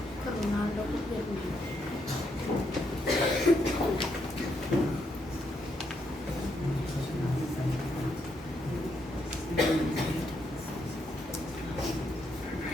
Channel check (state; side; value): normal; both; correlation 0.77